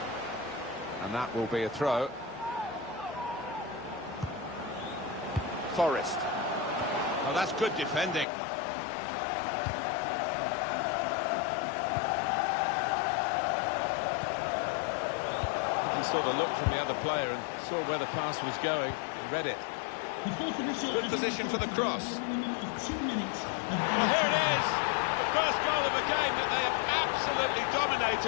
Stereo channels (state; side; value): drops out; right; at 8.2 s